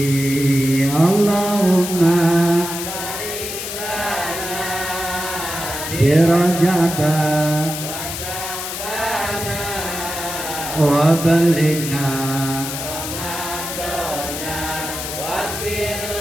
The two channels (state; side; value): noise; left; hiss, 6 dB below the sound